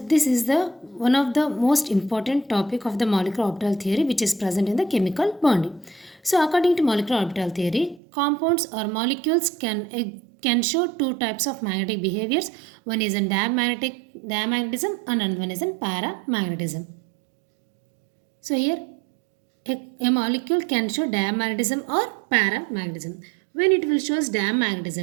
is the one of the most important topic of the molecular orbital theory which is present in the chemical bonding. So according to molecular orbital theory, compounds or molecules can show two types of magnetic behaviors. One is in diamagnetism and another one is in paramagnetism. So here a molecule can show diamagnetism or paramagnetism. When it will show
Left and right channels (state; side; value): drops out; left; at 8.0 s